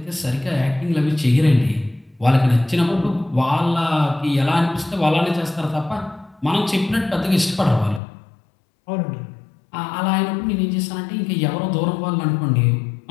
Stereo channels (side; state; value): right; drops out; at 8.0 s